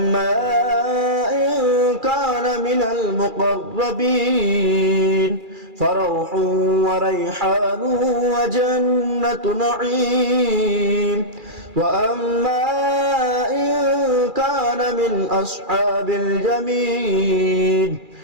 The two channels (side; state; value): left; late; 2.4 ms